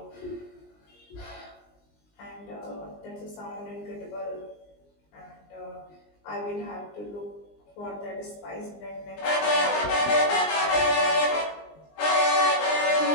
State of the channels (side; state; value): right; late; 20 ms